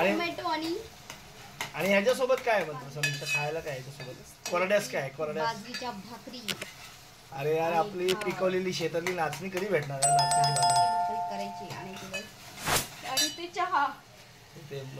आणि ह्याच्यासोबत काय म्हणतो समीक्षा, खायला काय ह्याच्यासोबत? कोरड्यास काय, कोरड्यास बाजरीच्या भाकरी. अरे यार, आपली पिकवलेली शेतातली नाचणी कधी भेटणार आहे? नाचणीची भाकरी करायची आणि ते चहा, ते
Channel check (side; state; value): both; identical; correlation 1.00